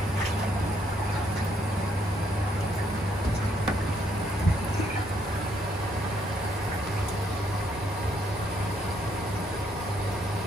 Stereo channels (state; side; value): normal; both; correlation 0.72